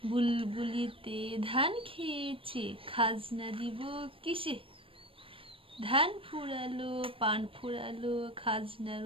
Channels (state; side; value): late; left; 0.26 ms